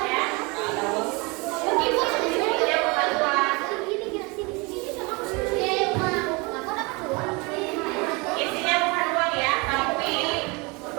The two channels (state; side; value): quieter; left; 27.7 dB